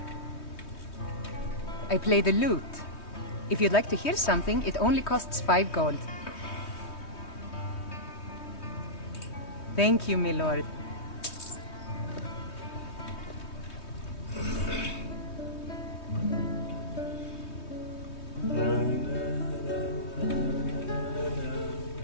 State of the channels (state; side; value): late; right; 3.2 ms